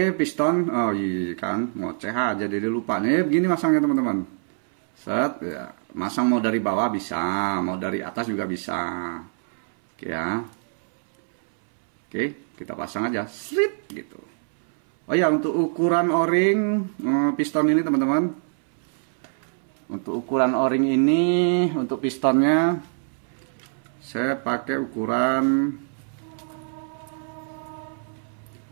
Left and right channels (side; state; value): left; silent; 62 dB below the other